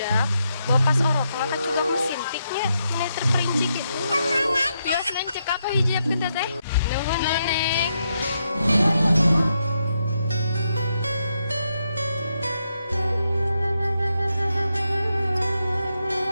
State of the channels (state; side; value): inverted; both; correlation -0.82